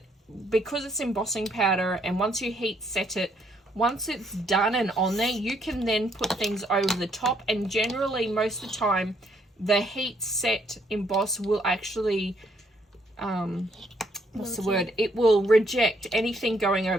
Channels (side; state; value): both; normal; correlation 0.70